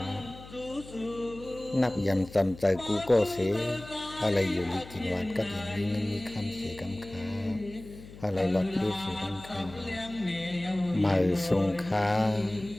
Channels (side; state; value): left; noise; hum, 17 dB below the sound